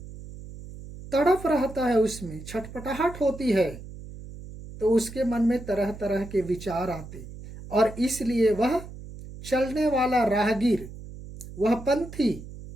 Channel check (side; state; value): right; noise; hum, 14 dB below the sound